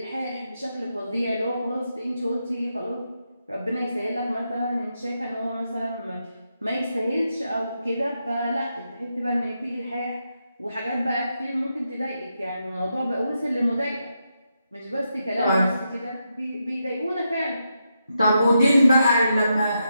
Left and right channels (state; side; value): inverted; both; correlation -0.84